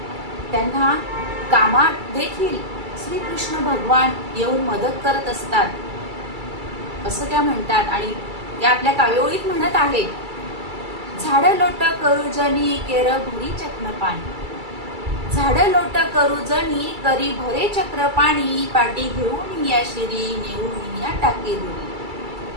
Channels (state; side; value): late; left; 2.3 ms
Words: त्यांना कामात देखील श्रीकृष्ण भगवान येऊन मदत करत असतात असं त्या म्हणतात. आणि त्या आपल्या काव्यओळीत म्हणत आहेत, झाड लोट करू जनी केर भरी चक्र पाणी, झाड लोट करू जनी करी भरे चक्र पाणी, पाटी घेऊन या शिरी नेऊन या टाकी दुरी,